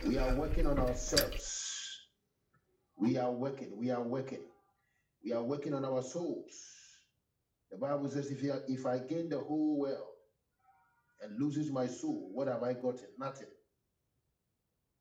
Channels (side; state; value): both; identical; correlation 1.00